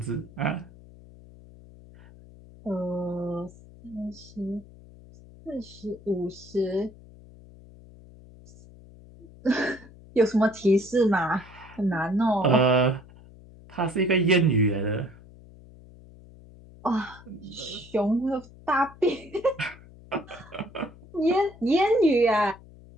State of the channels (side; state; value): left; noise; hum, 21 dB below the sound